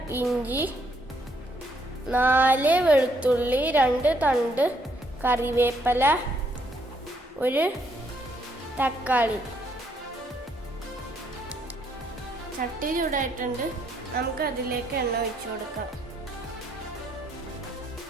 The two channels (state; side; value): normal; both; correlation 0.71